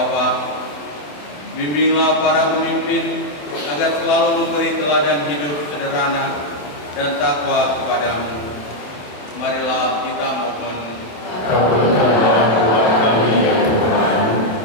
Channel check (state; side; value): late; right; 27 ms